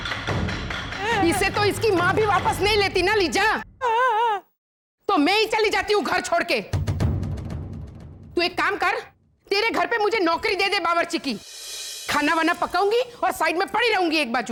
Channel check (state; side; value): identical; both; correlation 1.00